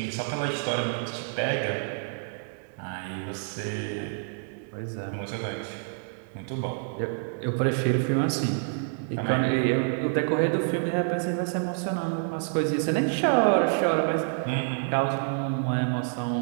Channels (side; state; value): left; silent; 60 dB below the other